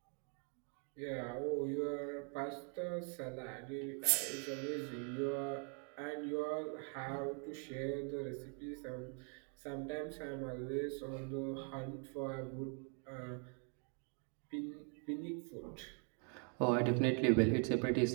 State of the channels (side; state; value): left; quieter; 38.9 dB